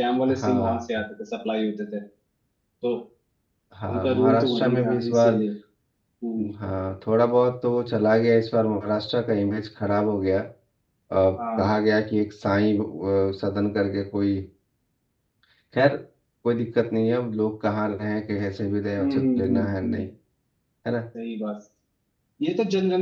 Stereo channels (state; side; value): identical; both; correlation 1.00